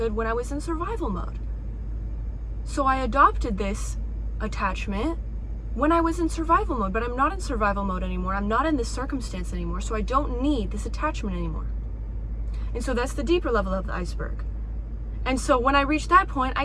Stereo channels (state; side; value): identical; both; correlation 1.00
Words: when I was in survival mode. So I adopted this attachment when I was in survival mode, but I'm not in survival mode anymore. I'm not in this circumstance anymore, so I don't need this attachment anymore. And so that's the deeper level of the iceberg. And so when I reached that point,